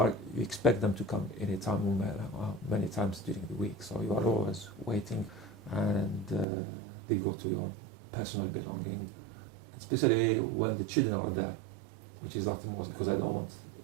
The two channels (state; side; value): drops out; left; at 6.5 s